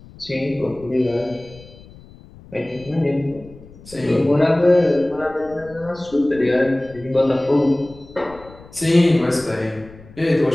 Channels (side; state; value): left; noise; rumble, 21 dB below the sound